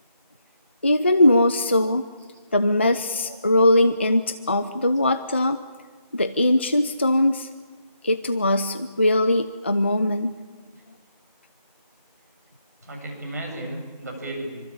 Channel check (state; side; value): inverted; both; correlation -0.79